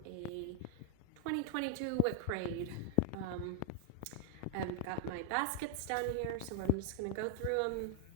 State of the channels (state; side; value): different; both; correlation 0.00